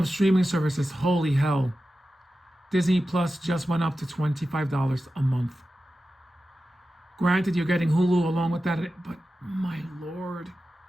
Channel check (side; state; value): both; normal; correlation 0.93